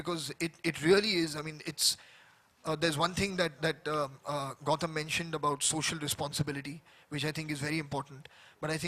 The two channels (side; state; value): both; identical; correlation 1.00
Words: it really is, I mean, it's, there's one thing that Gautam mentioned about social responsibility, which I think is very important. But I